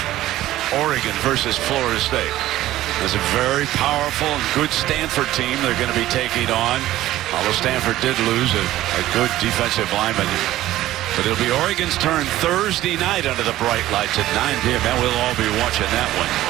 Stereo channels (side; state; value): left; quieter; 14.8 dB